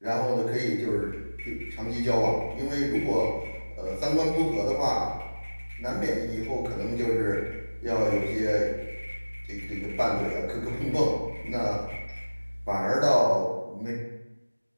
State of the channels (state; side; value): inverted; both; correlation -1.00